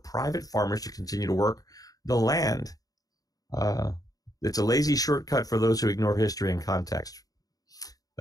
farmers to continue to work the land. It's a lazy shortcut for those who ignore history and context.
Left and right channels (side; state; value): right; late; 0.18 ms